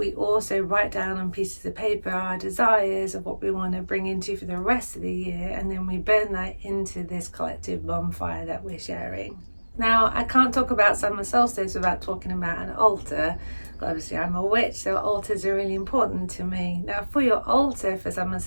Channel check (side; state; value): both; inverted; correlation -1.00